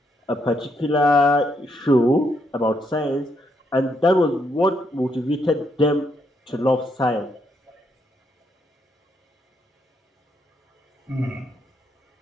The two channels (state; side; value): normal; both; correlation 0.76